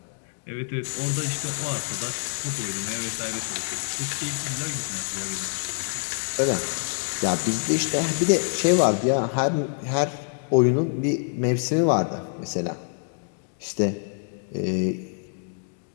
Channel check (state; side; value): silent; right; 61 dB below the other